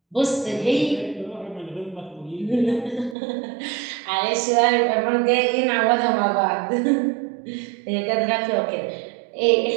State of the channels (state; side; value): drops out; left; at 3.2 s